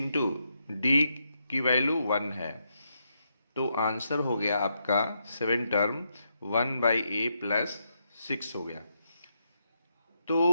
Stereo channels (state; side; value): inverted; both; correlation -0.81